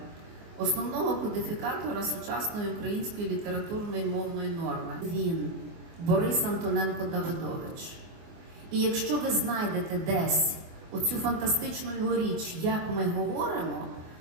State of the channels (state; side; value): late; left; 24 ms